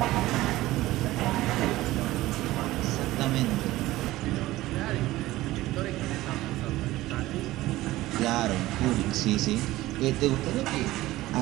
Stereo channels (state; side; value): quieter; left; 17.1 dB